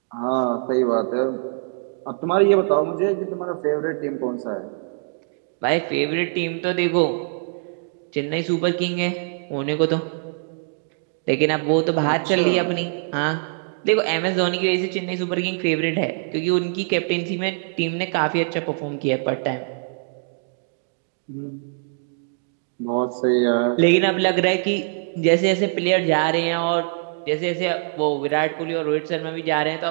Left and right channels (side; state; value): left; silent; digital silence